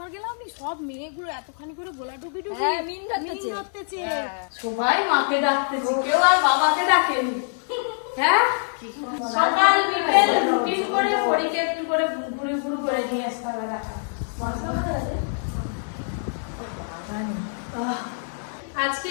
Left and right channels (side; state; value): right; silent; 55 dB below the other